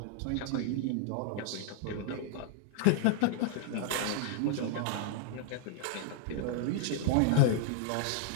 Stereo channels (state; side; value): different; both; correlation 0.00